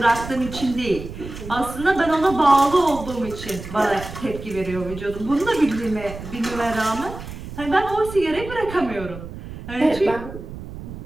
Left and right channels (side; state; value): right; noise; rumble, 12 dB below the sound